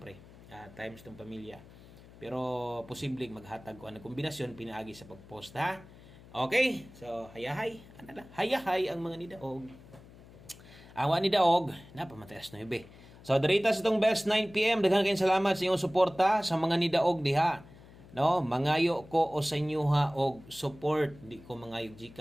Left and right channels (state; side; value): noise; left; hum, 21 dB below the sound